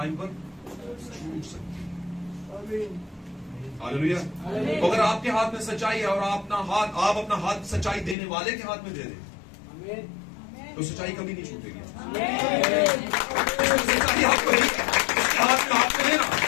पर छूट सकती है। हालेलुया। तो अगर आपके हाथ में सच्चाई है और आप अपना हाथ सच्चाई देने वाले के हाथ में दे दें, तो सच्चाई कभी नहीं छूटेगी। सच्चाई आपको उसके हाथ में हाथ में देना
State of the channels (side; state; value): right; drops out; at 8.2 s